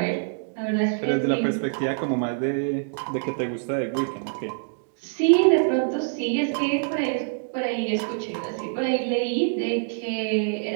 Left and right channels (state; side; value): silent; left; digital silence